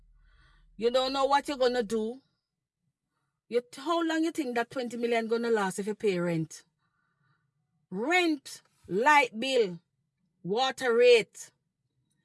You don't know what you're going to do. How long you think that 20 million going to last if you pay rent? Rent, light bill, water rate.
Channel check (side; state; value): both; identical; correlation 1.00